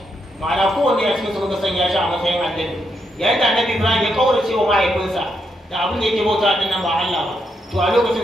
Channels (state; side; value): normal; both; correlation 0.80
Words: ma'ana kowanne a cikin su muka sanya shi a matsayin annabi yayin da annabi Ibrahim ya kaurace wa mahaifinsa da abin da yake bauta din nan ba Allah ba to a